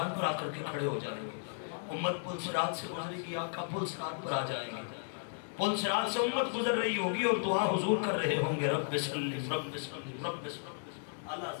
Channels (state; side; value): silent; right; digital silence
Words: پر آ کر کے کھڑے ہو جائیں گے. امت پل صراط سے گزرے گی آقا پل صراط پر آ جائیں گے. پل صراط سے امت گزر رہی ہوگی اور دعا حضور کر رہے ہوں گے رب سلم رب سلم رب سلم. اللہ